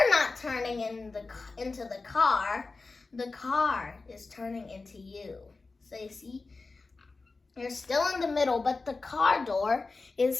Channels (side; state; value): right; quieter; 3.8 dB